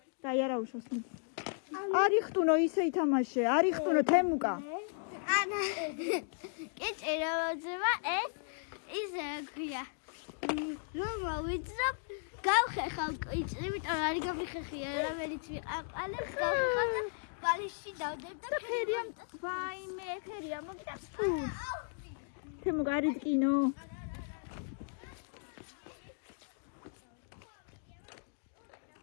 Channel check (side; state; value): right; silent; digital silence